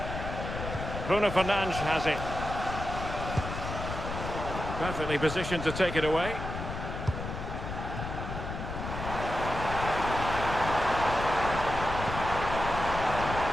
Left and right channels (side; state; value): left; noise; rumble, 6 dB below the sound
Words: Bruno Fernandes has it. Perfectly positioned to take it away.